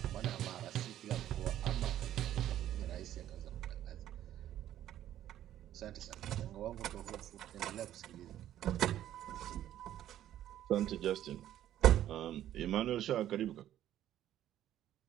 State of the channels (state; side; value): quieter; left; 12.1 dB